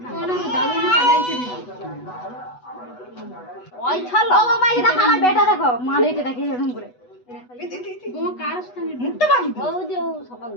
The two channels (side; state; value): right; late; 8.1 ms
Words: ওনা তো দাদু না পালাইছে দিদি ওই ছালো ও মাই এটা আমার বেটা দেখো মারে এটা দেখি এরকম করে ও কার স্থানে মুক্ত বাড়ি ও যে সকাল